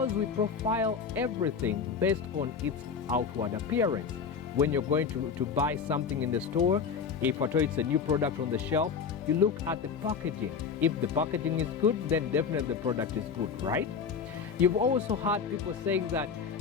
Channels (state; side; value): quieter; right; 6.1 dB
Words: we profile everything based on its outward appearance. When you're going to buy something in the store, if at all it's a new product on the shelf, you look at the packaging. If the packaging is good, then definitely the product is good, right? You've also heard people saying that